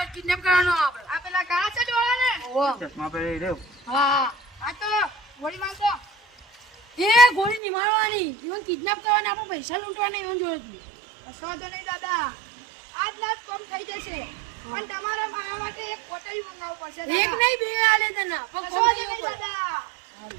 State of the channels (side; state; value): left; drops out; at 7.6 s